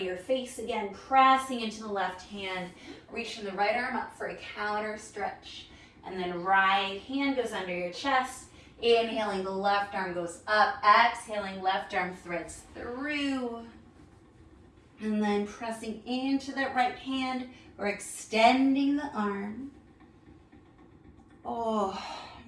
your face again, pressing into the left hand, reaching the right arm up for a counter stretch. And then right hand goes under your chest. Inhaling, the left arm goes up. Exhaling, left arm threads through. And then pressing into that right hand, or extending the arm.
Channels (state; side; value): identical; both; correlation 1.00